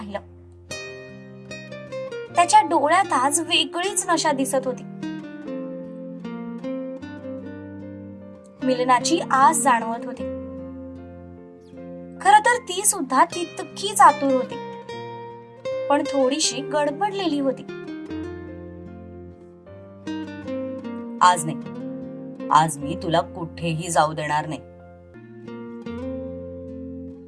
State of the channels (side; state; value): both; identical; correlation 1.00